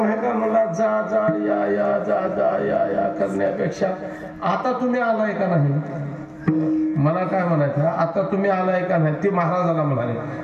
आहे का? मला जा जा या या जा जा या या करण्यापेक्षा आता तुम्ही आलाय का नाही? मला काय म्हणायचं, आता तुम्ही आलाय का नाही? ते महाराजाला म्हणाले,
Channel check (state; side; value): identical; both; correlation 1.00